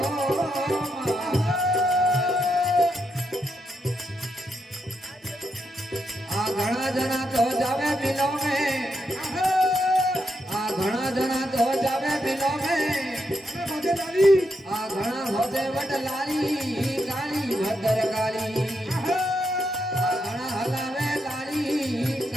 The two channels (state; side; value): normal; both; correlation 0.82